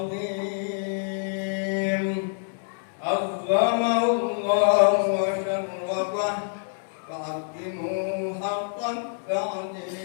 Azzamallahu wa syarrafah fa'aqimu haqqan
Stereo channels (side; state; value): right; silent; digital silence